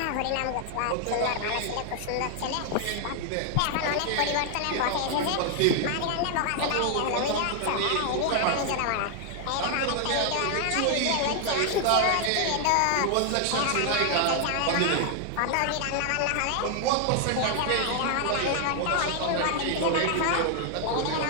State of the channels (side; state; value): both; different; correlation 0.00